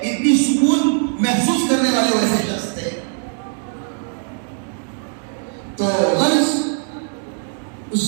اتنی سکون محسوس کرنے والے ویسے شخص تھے۔ تو غرض اس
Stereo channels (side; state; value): left; silent; 56 dB below the other